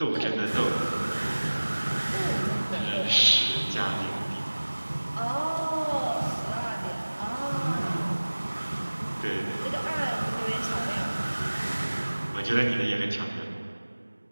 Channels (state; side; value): inverted; both; correlation -1.00